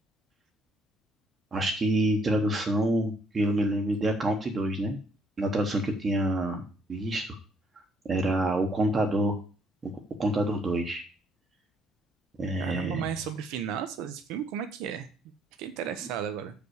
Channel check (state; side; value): normal; both; correlation 0.67